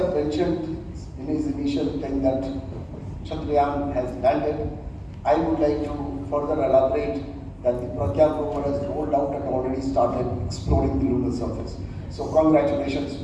mentioned in his initial thing that Chandrayaan has landed. I would like to further elaborate that the Pragyan rover has rolled out and already started exploring the lunar surface. So congratulations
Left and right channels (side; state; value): both; identical; correlation 1.00